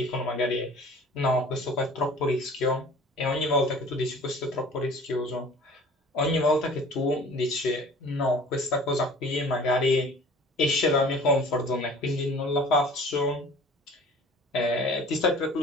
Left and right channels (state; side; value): normal; both; correlation 0.46